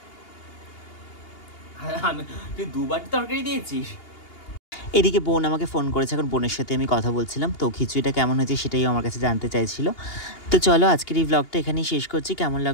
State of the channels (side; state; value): right; late; 2.8 ms